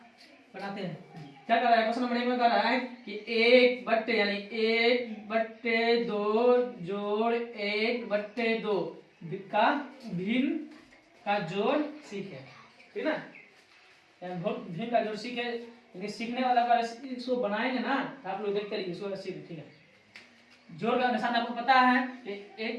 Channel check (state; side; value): identical; both; correlation 1.00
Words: बनाते हैं। क्या कर रहा है क्वेश्चन नंबर 1 में, कर रहा है कि 1/, यानी 1/2 जोड़ 1/2 का भिन्न का जोड़ सीखे, ठीक ना। भिन्न का जोड़ सीखे, लेकिन सीखने वाला का इसको बनाएंगे ना तो आप लोग देखते रहिए, इसको सीखे, ठीक है। जोड़ का निशान आपको पता है कि